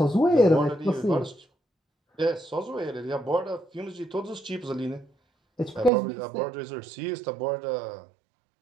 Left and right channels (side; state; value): left; drops out; at 5.9 s